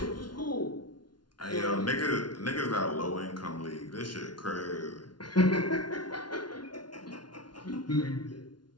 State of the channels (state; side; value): late; right; 0.70 ms